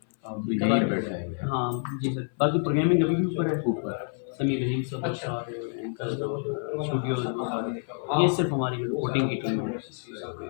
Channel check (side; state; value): right; silent; 57 dB below the other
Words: आप भी यहीं बैठे हैं। हाँ जी सर, बाकी प्रोग्रामिंग अभी भी ऊपर है, समीर सब सारे एंकर जो स्टूडियो वो सारे, ये सिर्फ हमारी जो रिपोर्टिंग की टीम है